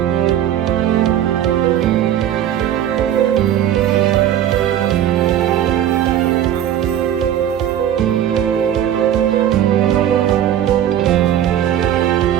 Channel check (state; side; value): quieter; left; 10.8 dB